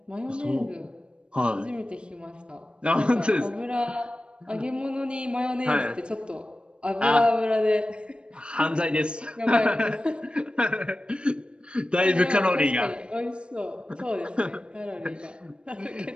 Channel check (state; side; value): late; left; 0.055 ms